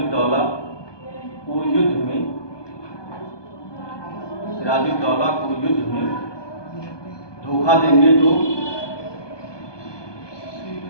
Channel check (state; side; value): late; right; 1.2 ms